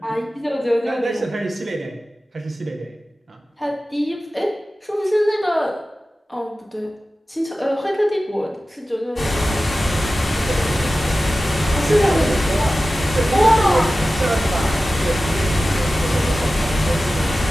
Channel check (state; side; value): normal; both; correlation 0.95